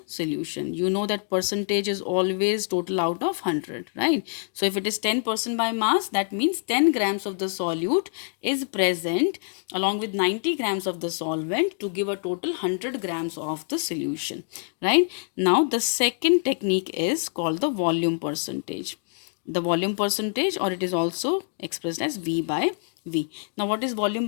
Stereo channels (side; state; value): right; silent; 61 dB below the other